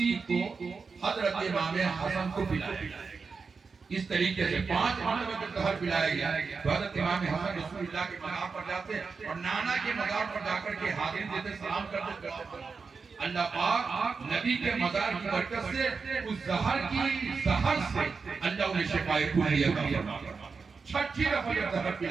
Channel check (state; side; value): quieter; left; 4.9 dB